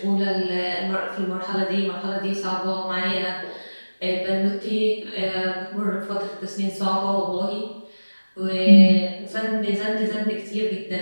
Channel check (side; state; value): both; inverted; correlation -1.00